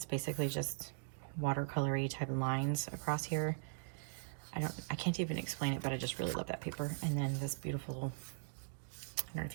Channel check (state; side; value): silent; left; digital silence